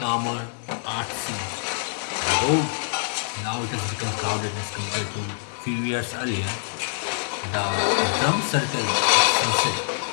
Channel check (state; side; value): silent; right; 58 dB below the other